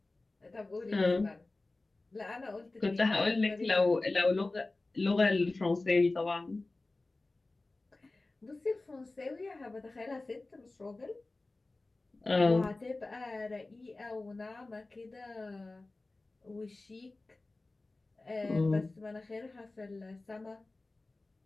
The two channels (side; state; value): right; quieter; 3.2 dB